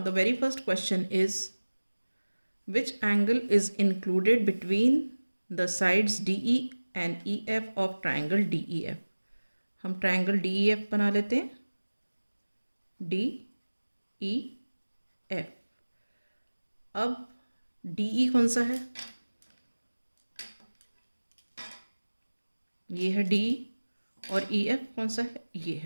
very first question is, which angle is included between the sides DE and EF of triangle DEF? हम triangle DEF बना लेते हैं, DEF. अब DE कौन सा है? ये है DE और EF कौन सा है? ये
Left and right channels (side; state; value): both; inverted; correlation -1.00